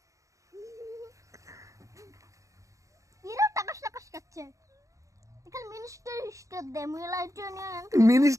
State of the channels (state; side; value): late; left; 0.16 ms